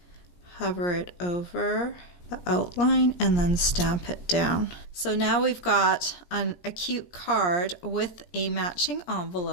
hover it over the outline and then stamp it down. So now we've got a cute card with a matching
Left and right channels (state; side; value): late; right; 17 ms